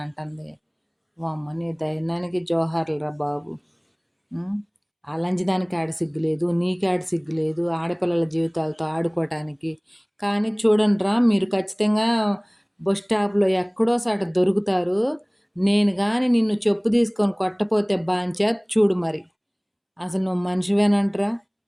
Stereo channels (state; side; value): identical; both; correlation 1.00